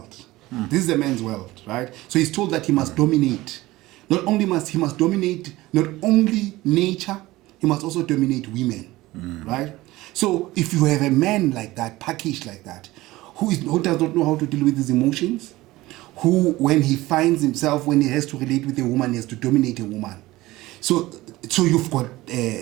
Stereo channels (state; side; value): quieter; left; 18.4 dB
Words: This is a man's world, right? So he's told that he must dominate. Not only must he dominate not only nature, he must also dominate women, right? So if you have a man like that, packaged like that, who does not know how to deal with his emotions, who, when he finds himself, when he has to relate with a woman, he has to dominate a woman. So you've got